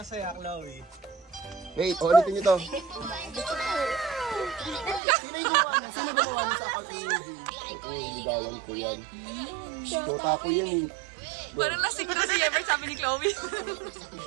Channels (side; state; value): left; drops out; at 5.0 s